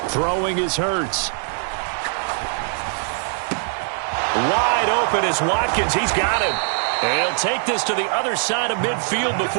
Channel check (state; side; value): silent; left; 64 dB below the other